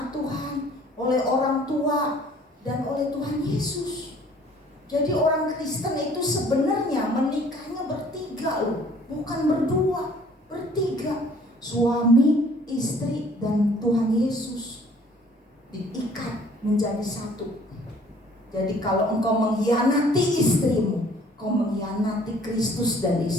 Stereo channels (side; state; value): both; normal; correlation 0.56